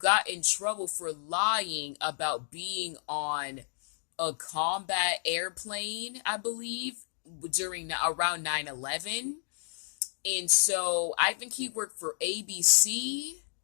in trouble for lying about being on a combat airplane, I believe, around 9/11. And so I think he worked for ABC.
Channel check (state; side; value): silent; right; digital silence